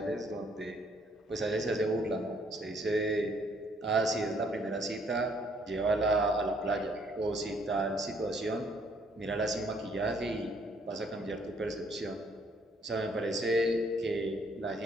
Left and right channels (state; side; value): normal; both; correlation 0.65